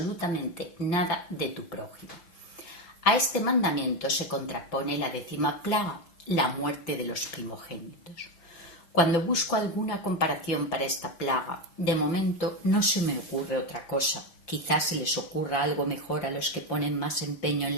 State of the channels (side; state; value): right; late; 5.8 ms